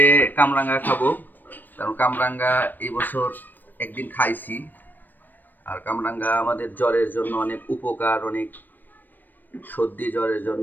কামরাঙ্গা খাবো, কারণ কামরাঙ্গা এই বছর একদিন খাইছি। আর কামরাঙ্গা আমাদের জ্বরের জন্য অনেক উপকার, অনেক সর্দি জ্বরের জন্য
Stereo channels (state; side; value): late; right; 0.090 ms